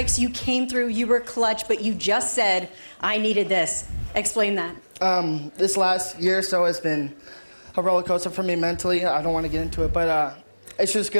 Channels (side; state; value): both; inverted; correlation -1.00